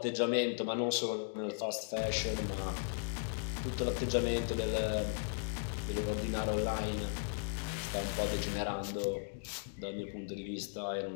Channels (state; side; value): silent; right; digital silence